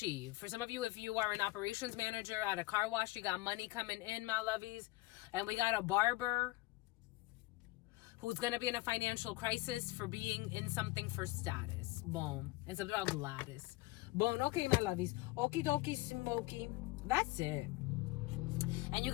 For some of you, if you are an operations manager at a car wash, you got money coming in, my lovies. And we got a barber who's going to be in a financial crisis for being in something for status. Boom. And something about Gladys. Boom. Okay, my lovies. Okie dokie smoky. That's it. And you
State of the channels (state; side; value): quieter; right; 20.0 dB